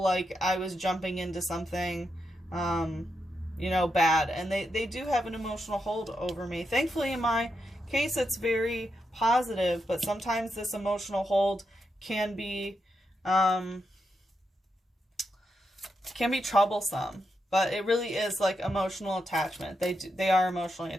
I was jumping into something, you know, bad. And they do have an emotional hold over me. Thankfully, in my case, it's very positive, but sometimes this emotional hold can be troublesome. But it really is like emotional attachment. They are emotionally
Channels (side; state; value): both; normal; correlation 0.84